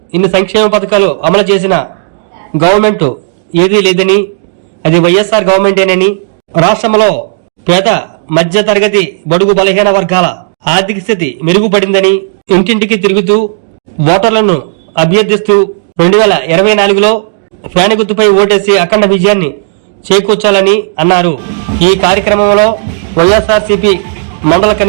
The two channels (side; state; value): left; silent; digital silence